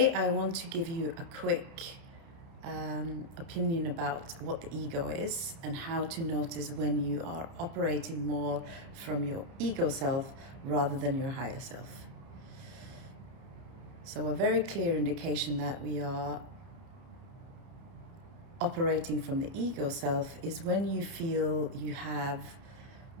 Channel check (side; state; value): left; late; 30 ms